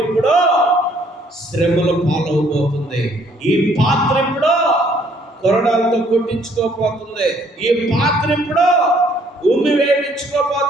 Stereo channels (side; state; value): both; normal; correlation 0.63